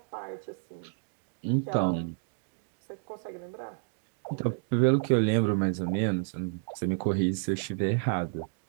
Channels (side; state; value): left; silent; 58 dB below the other